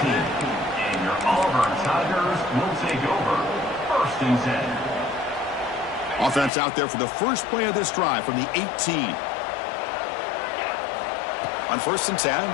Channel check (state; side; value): drops out; right; at 6.5 s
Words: your Auburn Tigers will take over. First and 10. Offense out there for the first play of this drive from the 18. On first and